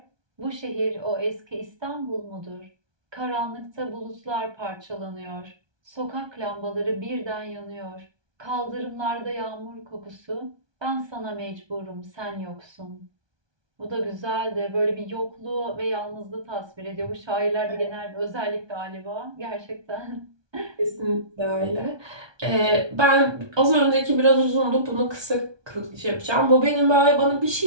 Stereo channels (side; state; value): left; late; 1.2 ms